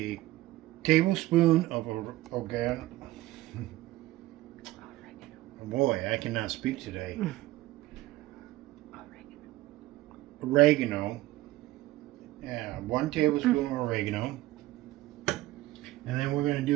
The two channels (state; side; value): quieter; left; 17.1 dB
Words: tablespoon of oregano. Boy, I cannot speak today. Oregano. Yeah, 1 tablespoon of oregano. And then we're going to